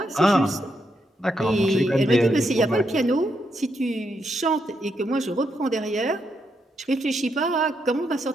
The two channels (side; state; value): both; normal; correlation 0.80